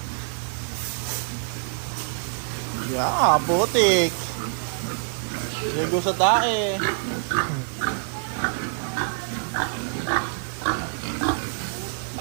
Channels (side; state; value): left; silent; 61 dB below the other